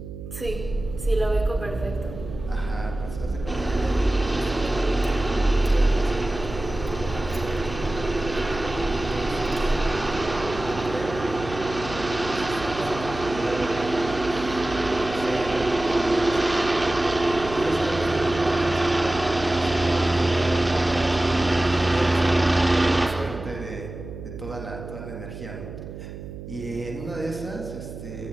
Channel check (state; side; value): noise; right; hum, 11 dB below the sound